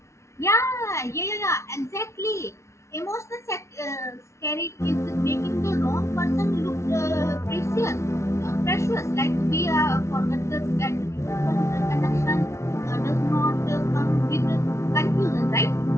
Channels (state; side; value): late; right; 0.13 ms